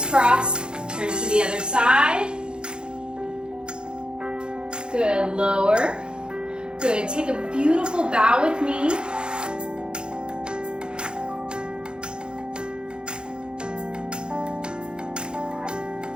turn to the other side, good, lower, good, take a beautiful bow with me.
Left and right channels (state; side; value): late; left; 0.050 ms